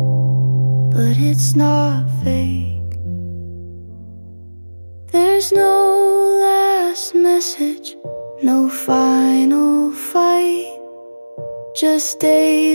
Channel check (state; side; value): inverted; both; correlation -1.00